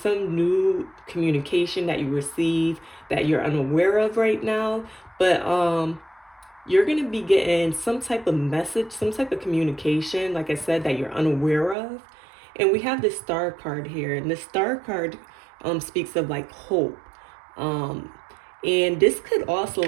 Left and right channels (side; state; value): left; drops out; at 11.8 s